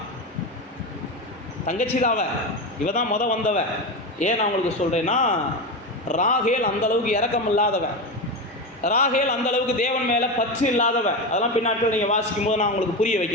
தங்கச்சி தாவ, இவ தான் வந்தவ. ஏன் நான் உங்களுக்கு சொல்கிறேன்னா, ராகேல் அந்தளவுக்கு இரக்கம் இல்லாதவன், ராகேல் அந்தளவுக்கு தேவன் மேலே பற்று இல்லாதவன். அதெல்லாம் பின்னாட்கள் நீங்கள் வாசிக்கும் போது நான் உங்களுக்கு புரிய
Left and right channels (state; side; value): normal; both; correlation 0.18